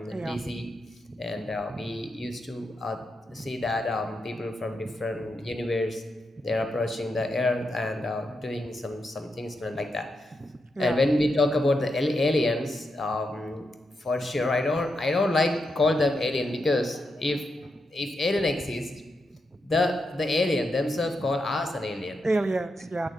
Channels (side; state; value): both; normal; correlation 0.85